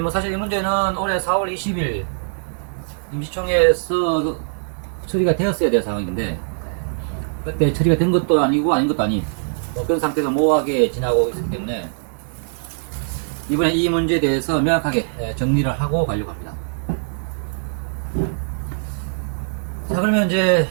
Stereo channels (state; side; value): silent; left; digital silence